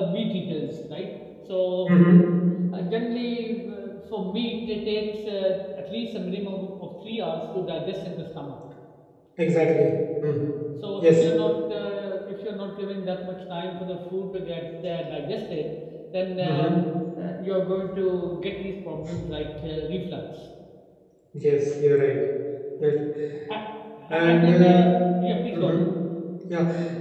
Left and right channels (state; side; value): identical; both; correlation 1.00